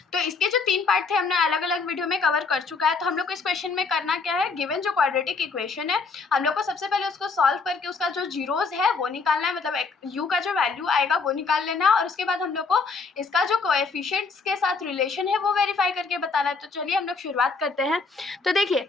तो इसके जो 3 पार्ट थे हमने अलग अलग वीडियो में कवर कर चुका है। तो हम लोग को इस क्वेश्चन में करना क्या है, गिवन जो क्वाड्रेटिक इक्वेशन है हम लोग को सबसे पहले उसको सॉल्व करके उसका जो जीरोज है वो निकालना है, मतलब यू का जो वैल्यू आएगा वो निकाल लेना है, और उसके बाद हम लोग को इसका जो कोएफिशिएंट्स के साथ रिलेशन है वो वेरीफाई करके बताना है। तो चलिए हम लोग शुरुआत करते हैं। तो देखिए,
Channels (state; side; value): quieter; right; 4.6 dB